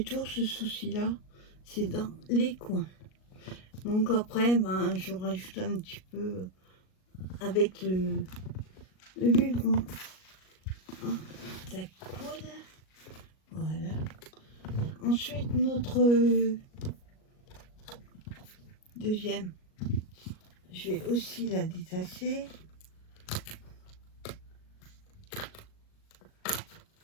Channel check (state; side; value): late; right; 38 ms